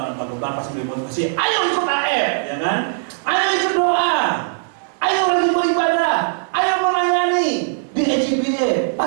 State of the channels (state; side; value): silent; left; digital silence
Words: pak gembala pasti beri motivasi, ayo ikut AF, ya kan? Ayo ikut doa, ayo rajin beribadah, ayo melayani di EJBA,